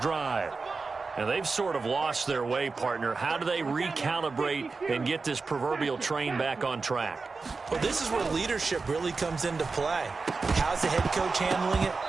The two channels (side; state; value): left; quieter; 4.2 dB